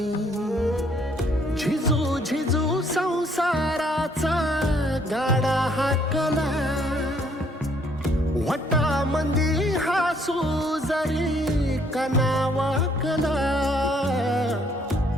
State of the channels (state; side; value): normal; both; correlation 0.66